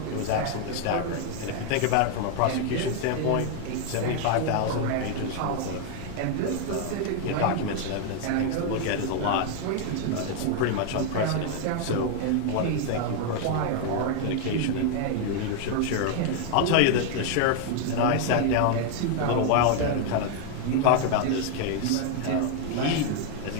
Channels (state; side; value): different; both; correlation 0.00